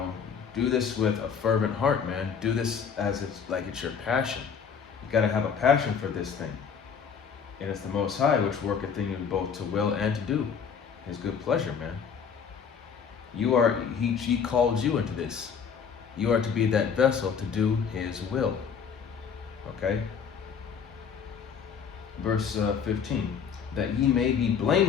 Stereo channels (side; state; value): right; quieter; 6.7 dB